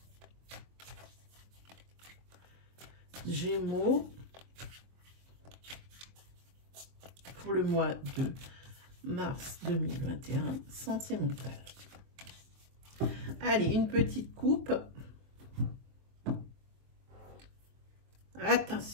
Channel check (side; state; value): left; late; 23 ms